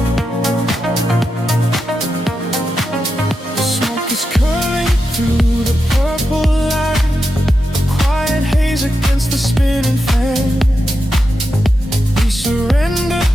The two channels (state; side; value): normal; both; correlation 0.88